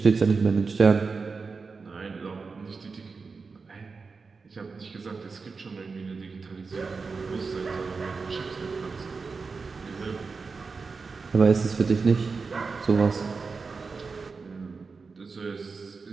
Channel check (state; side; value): quieter; left; 4.6 dB